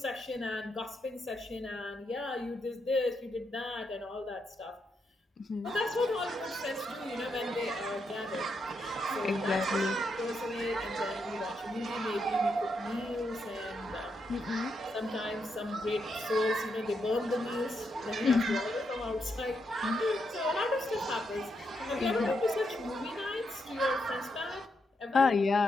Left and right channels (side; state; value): both; normal; correlation 0.81